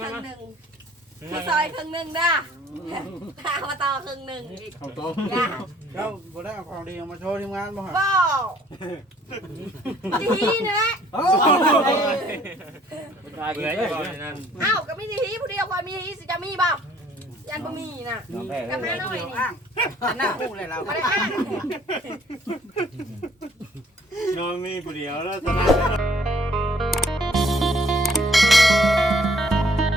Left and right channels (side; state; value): both; normal; correlation 0.61